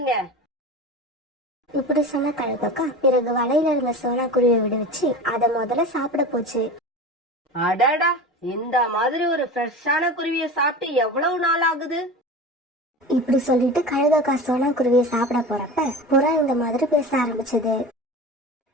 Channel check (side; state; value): both; normal; correlation 0.32